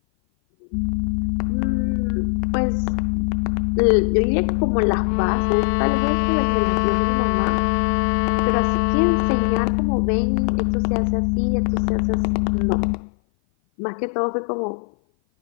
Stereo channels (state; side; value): silent; right; 56 dB below the other